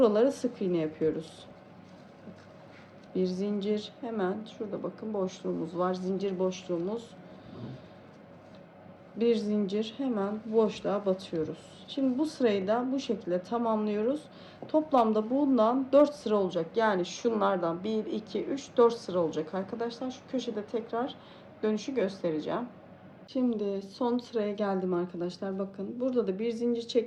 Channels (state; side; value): identical; both; correlation 1.00